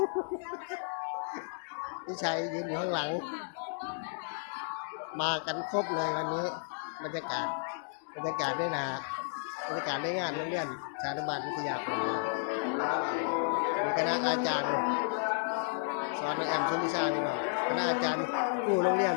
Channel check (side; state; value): right; silent; digital silence